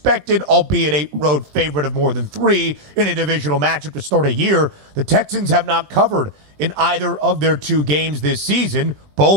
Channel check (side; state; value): left; late; 20 ms